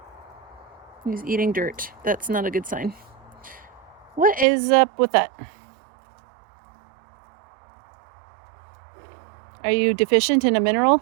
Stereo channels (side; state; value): left; drops out; at 4.5 s